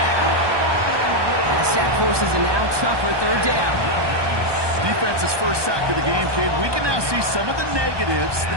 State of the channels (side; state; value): left; late; 1.2 ms